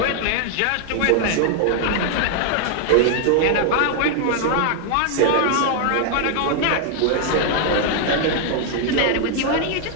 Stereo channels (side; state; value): both; different; correlation 0.00